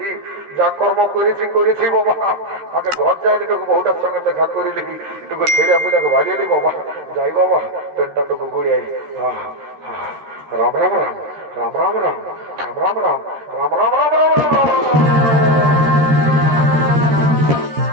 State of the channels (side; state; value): left; late; 13 ms